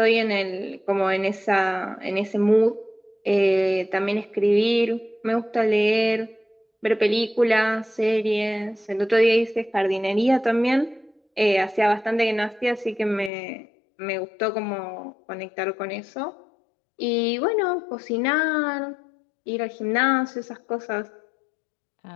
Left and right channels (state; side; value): drops out; right; at 13.3 s